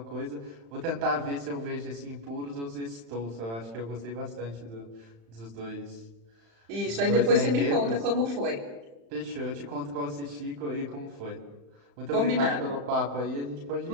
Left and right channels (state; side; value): late; left; 35 ms